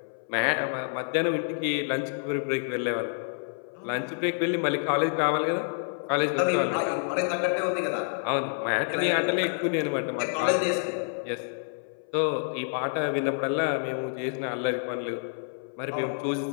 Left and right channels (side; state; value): right; silent; 59 dB below the other